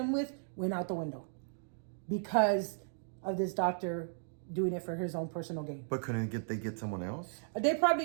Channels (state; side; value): silent; left; digital silence